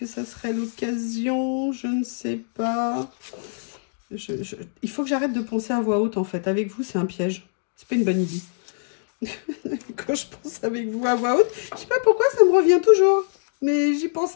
ça serait l'occasion, je ne sais pas. Il faut que j'arrête de penser à voix haute, en fait. Avec vous, c'est un piège. C'est pas une bonne idée. Quand je pense avec vous à voix haute, je sais pas pourquoi ça me revient toujours. Mais j'y pense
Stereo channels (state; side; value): silent; right; digital silence